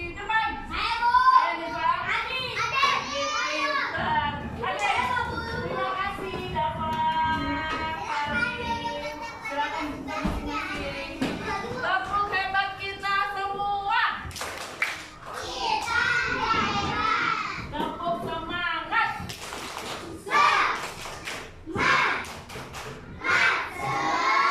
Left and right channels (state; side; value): identical; both; correlation 1.00